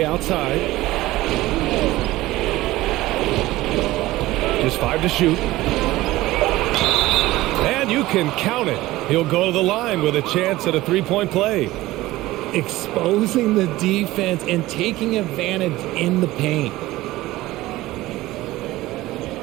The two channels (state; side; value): quieter; left; 17.6 dB